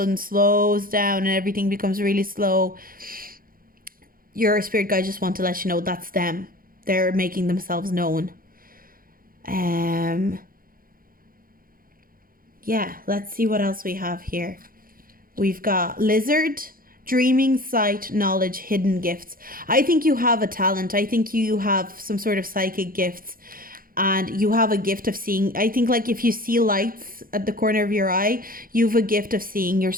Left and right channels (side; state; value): left; late; 0.42 ms